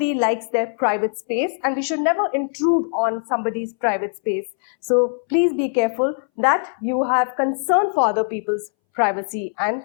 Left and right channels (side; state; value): right; silent; 63 dB below the other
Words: likes their private space and we should never intrude on somebody's private space. So please be careful that you have concern for other people's privacy and